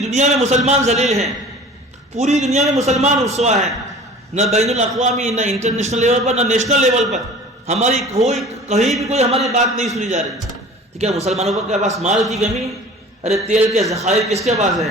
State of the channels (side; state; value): both; normal; correlation 0.43